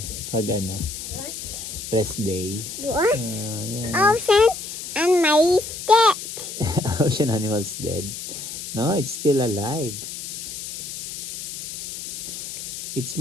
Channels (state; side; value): noise; left; hiss, 8 dB below the sound